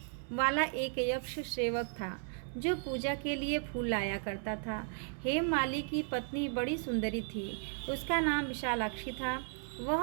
वाला एक यक्ष सेवक था जो पूजा के लिए फूल लाया करता था। हेममाली की पत्नी बड़ी सुंदरी थी, उसका नाम विशालाक्षी था।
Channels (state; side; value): silent; left; 54 dB below the other